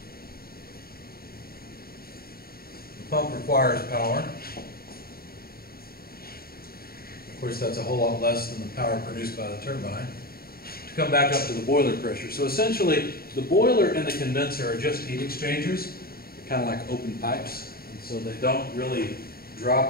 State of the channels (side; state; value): right; late; 0.44 ms